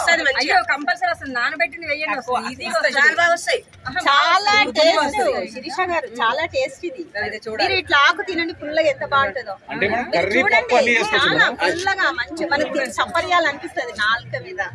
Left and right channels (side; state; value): both; identical; correlation 1.00